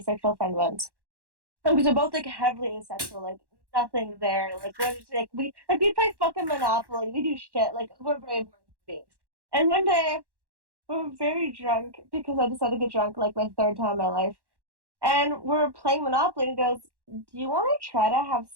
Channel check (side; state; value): left; late; 1.1 ms